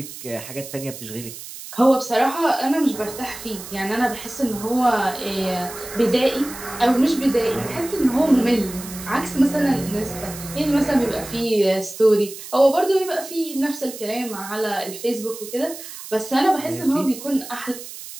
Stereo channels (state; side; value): noise; right; hiss, 12 dB below the sound